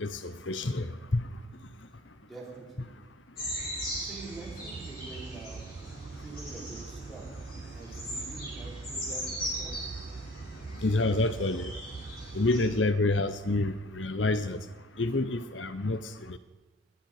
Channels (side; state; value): both; normal; correlation 0.49